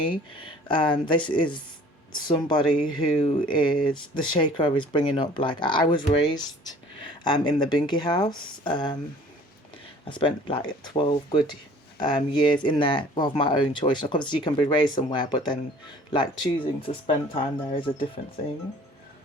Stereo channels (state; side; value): normal; both; correlation 0.51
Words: This is somebody who is, the shaker is bringing up, like, I was raised in the Binky house. I spent like 12 good years in there of my own choice. Like, obviously you can be raised somewhere, but then like choosing to spend time there is a different thing.